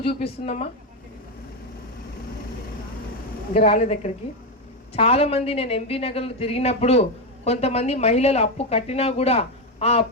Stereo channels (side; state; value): both; normal; correlation 0.09